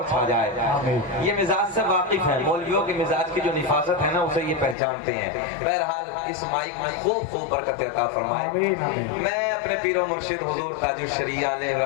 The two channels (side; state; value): right; drops out; at 4.8 s